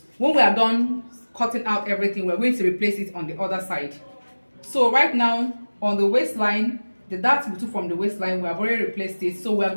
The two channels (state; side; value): inverted; both; correlation -1.00